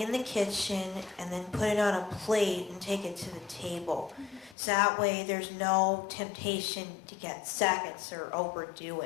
the kitchen and then put it on a plate and take it to the table. So that way there's no temptation to get seconds or overdo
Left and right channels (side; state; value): right; drops out; at 4.5 s